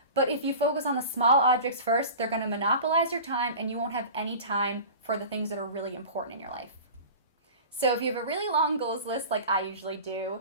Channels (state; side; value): inverted; both; correlation -0.36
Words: But if you focus on the small objects first, they're going to monopolize your time and you won't have any time for the things that are really important in your life. So if you have a really long goals list like I usually do,